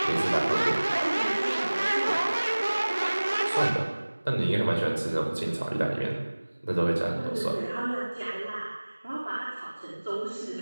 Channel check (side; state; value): both; inverted; correlation -1.00